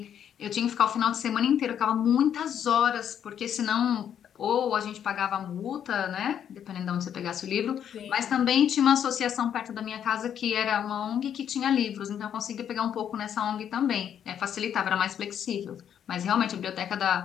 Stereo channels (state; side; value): quieter; right; 9.1 dB